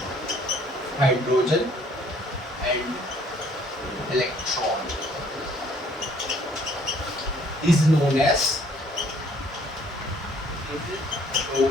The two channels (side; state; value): both; normal; correlation 0.60